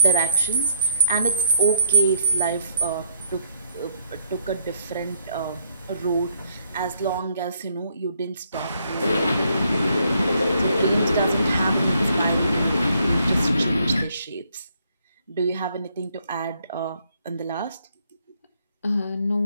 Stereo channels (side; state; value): both; inverted; correlation -0.71